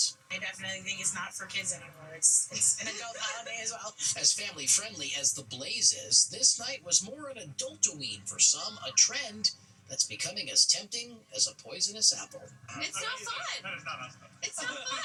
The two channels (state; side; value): identical; both; correlation 1.00